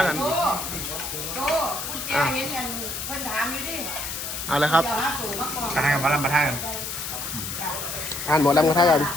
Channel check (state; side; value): noise; left; hiss, 5 dB below the sound